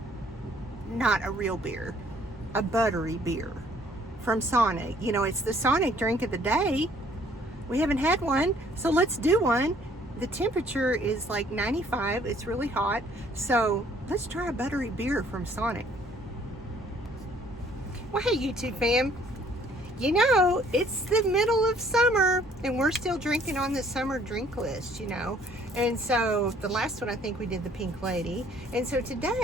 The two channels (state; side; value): normal; both; correlation 0.60